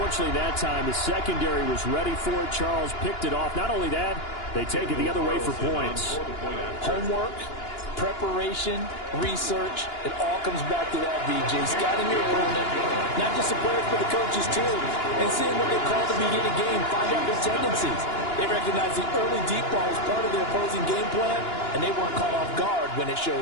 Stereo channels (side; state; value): right; late; 2.9 ms